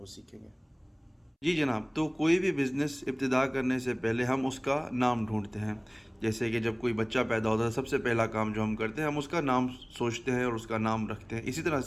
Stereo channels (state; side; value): identical; both; correlation 1.00